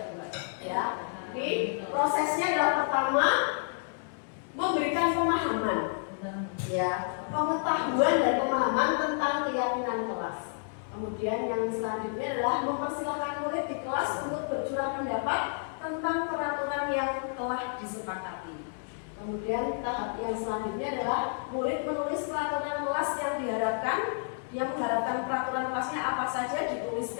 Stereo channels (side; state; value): right; silent; digital silence